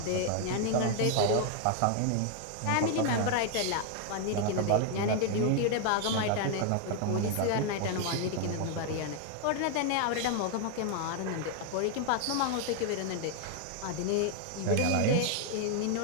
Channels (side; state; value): both; different; correlation 0.00